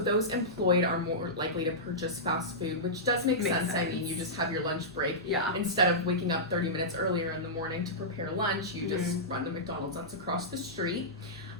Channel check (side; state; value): both; normal; correlation -0.15